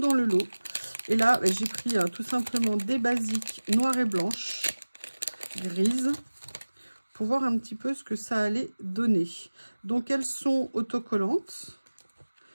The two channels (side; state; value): both; inverted; correlation -1.00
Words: le lot. Et là, j'ai pris tout simplement des basiques noires et blanches, grises, pour voir un petit peu ce que ça allait donner. Donc, elles sont autocollantes.